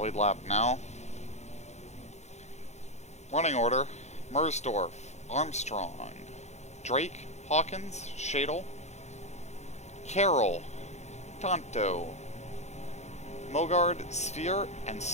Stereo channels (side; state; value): right; late; 0.33 ms